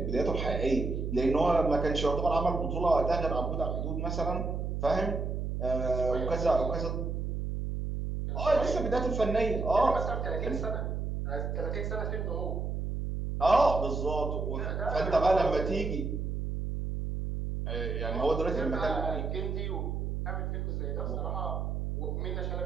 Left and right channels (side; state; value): right; noise; hum, 2 dB below the sound